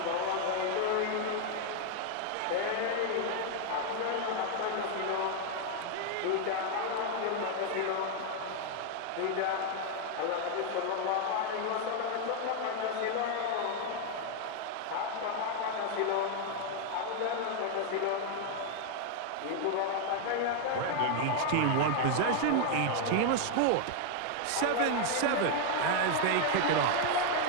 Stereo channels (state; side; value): different; both; correlation 0.00